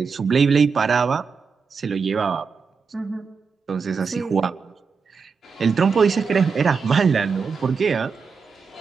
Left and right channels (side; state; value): left; quieter; 5.4 dB